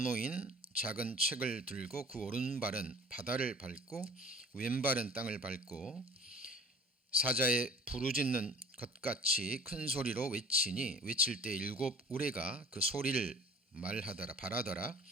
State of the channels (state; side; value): normal; both; correlation 0.46